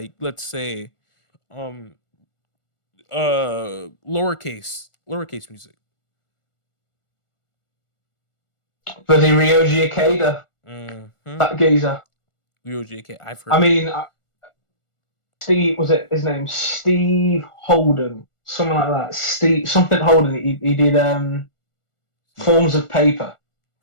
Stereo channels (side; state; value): right; late; 1.4 ms